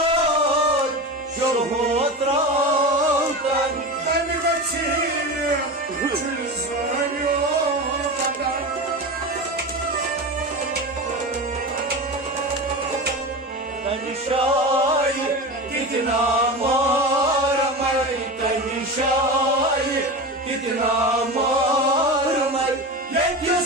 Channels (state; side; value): normal; both; correlation 0.26